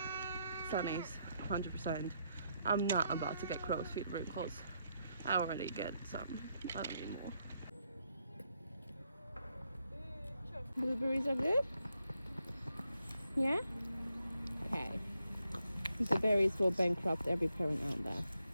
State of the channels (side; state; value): both; inverted; correlation -0.79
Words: sunny's 100%. I'm not about to get crow's feet wrinkles. I already get some. I don't need more. Blueberries are good? Yeah? Okay. The berries will bankrupt every parent out there.